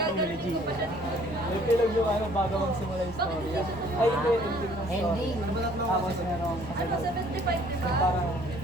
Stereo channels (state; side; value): normal; both; correlation 0.58